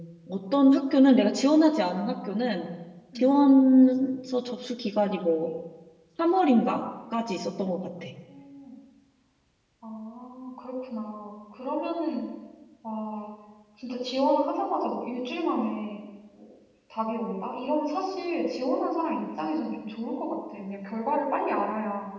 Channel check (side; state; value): both; identical; correlation 1.00